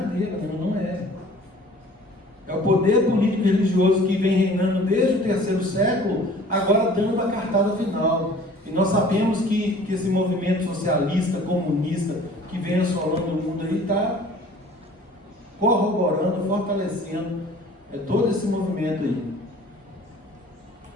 não é. É o poder político e religioso que vem reinando desde o terceiro século, agora dando a cartada final. E nós sabemos que esse movimento socialista, comunista, que vem assolando o mundo aí, está corroborando, fortalecendo todo esse movimento aí.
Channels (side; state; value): both; normal; correlation 0.49